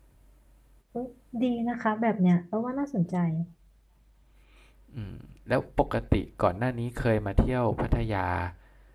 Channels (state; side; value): identical; both; correlation 1.00